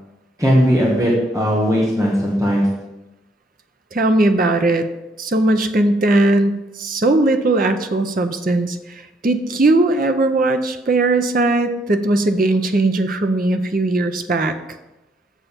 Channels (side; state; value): both; normal; correlation 0.70